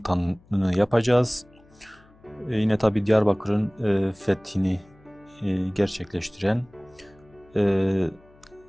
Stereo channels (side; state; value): left; noise; hum, 28 dB below the sound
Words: yapacağız. Yine tabii Diyarbakır'ın fethini gerçekleştiren